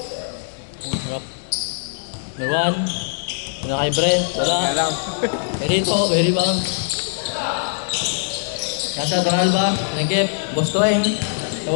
Harap. Number 1. Una kay Brent. Wala. Very bang. Nasa Donalba. Nagip. Bostoeng.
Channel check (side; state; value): right; silent; digital silence